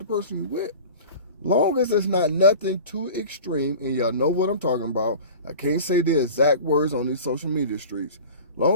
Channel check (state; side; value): inverted; both; correlation -0.38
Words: person you're with. Long as it's not nothing too extreme, and y'all know what I'm talking about. I can't say the exact words on these social media streets. Long